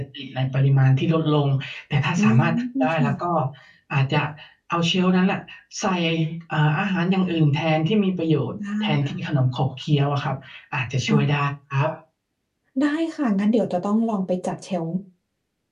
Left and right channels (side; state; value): both; identical; correlation 1.00